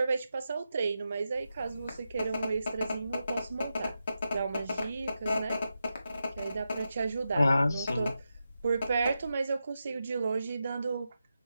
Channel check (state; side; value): inverted; both; correlation -0.89